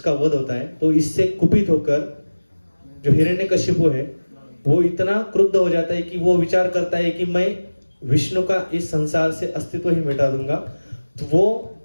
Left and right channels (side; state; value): both; inverted; correlation -1.00